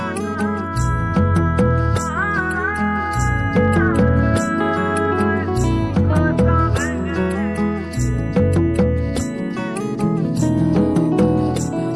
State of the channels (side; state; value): both; identical; correlation 1.00